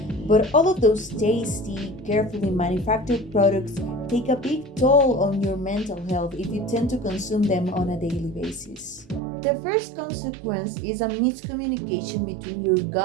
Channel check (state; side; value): drops out; left; at 9.2 s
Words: But all of those tasty, carefully manufactured products take a big toll on your mental health if you tend to consume them on a daily basis. The first consequence is a miscommunication between your